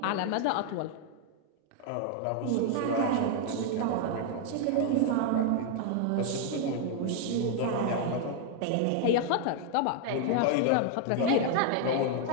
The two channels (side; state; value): both; different; correlation 0.00